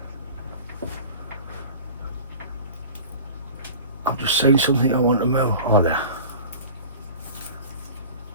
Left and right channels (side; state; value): both; inverted; correlation -0.39